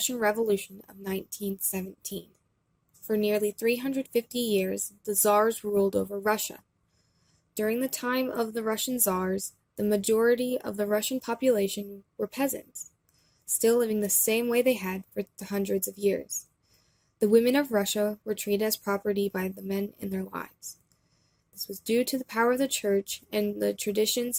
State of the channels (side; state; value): both; identical; correlation 1.00